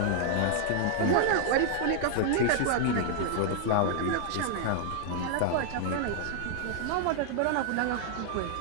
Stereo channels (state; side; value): different; both; correlation -0.01